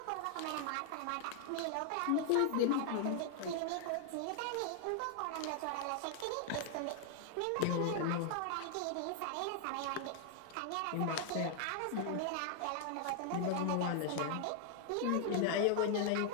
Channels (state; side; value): different; both; correlation 0.00